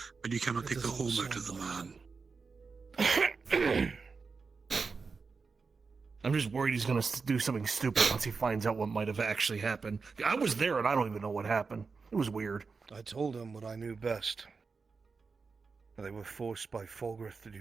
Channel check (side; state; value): left; quieter; 4.8 dB